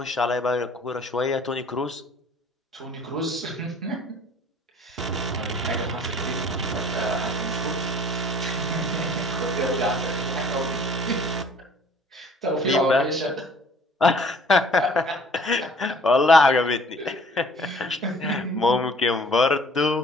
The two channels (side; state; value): both; normal; correlation 0.53